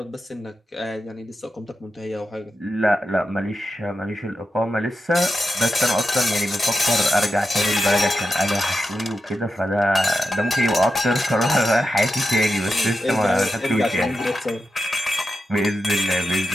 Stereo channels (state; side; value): normal; both; correlation 0.88